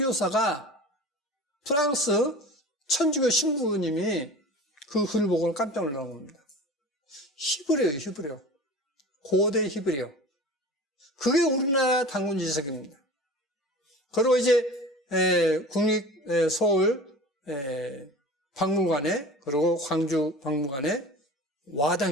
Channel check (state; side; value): normal; both; correlation 0.38